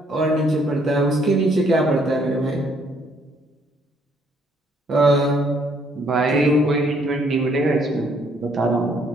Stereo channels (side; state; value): both; normal; correlation 0.67